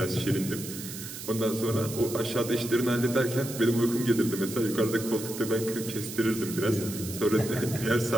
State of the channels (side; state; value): right; noise; hiss, 10 dB below the sound